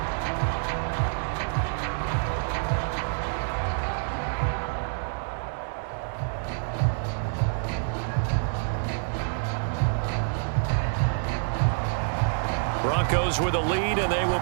Broncos with a lead, and they will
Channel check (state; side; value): silent; left; 60 dB below the other